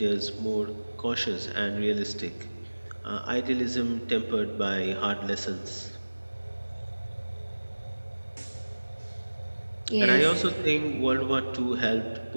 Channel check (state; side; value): inverted; both; correlation -1.00